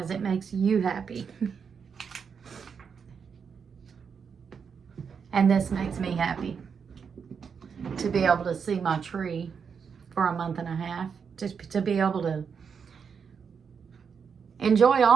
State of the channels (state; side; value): quieter; left; 6.4 dB